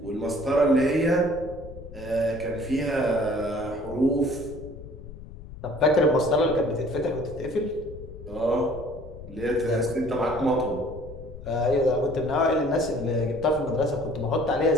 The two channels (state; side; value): noise; left; rumble, 14 dB below the sound